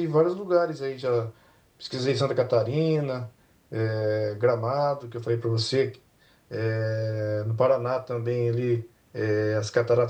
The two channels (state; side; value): identical; both; correlation 1.00